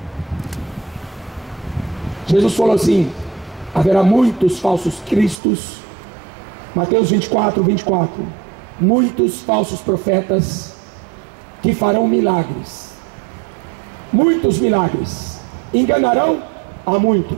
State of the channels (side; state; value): left; drops out; at 5.4 s